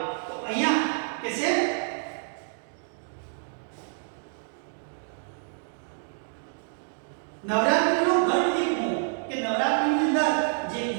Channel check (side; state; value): left; silent; digital silence